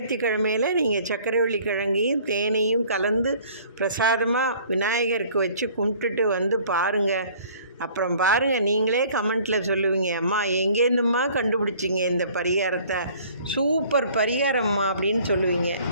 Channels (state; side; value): inverted; both; correlation -0.53